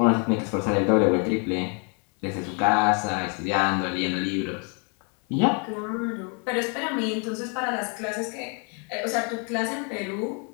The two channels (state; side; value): quieter; right; 36.8 dB